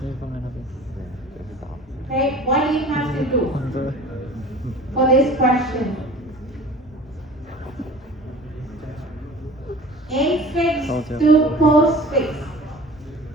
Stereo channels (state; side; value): normal; both; correlation 0.42